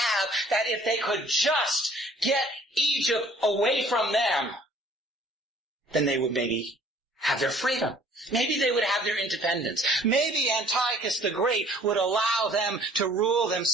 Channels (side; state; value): both; normal; correlation 0.56